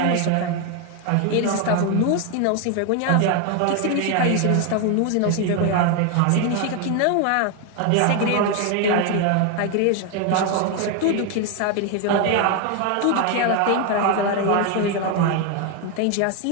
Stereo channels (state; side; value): different; both; correlation 0.01